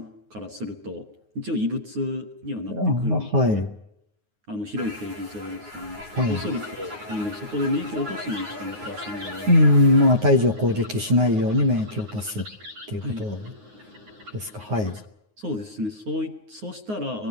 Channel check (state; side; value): late; left; 9.5 ms